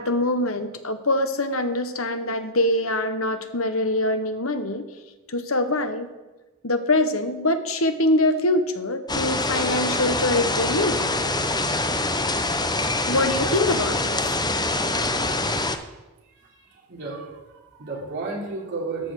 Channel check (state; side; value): normal; both; correlation -0.07